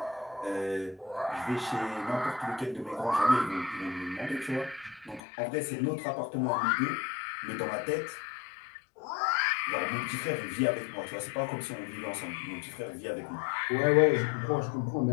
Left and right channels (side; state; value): right; drops out; at 5.2 s